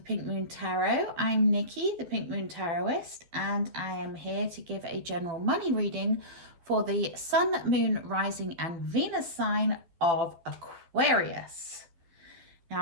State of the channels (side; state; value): left; late; 12 ms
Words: Moon Tarot. I'm Nikki, the Pink Moon Tarotist, and I am here to give a general money reading for the Sun, Moon, Rising, and Venus sign of Aquarius.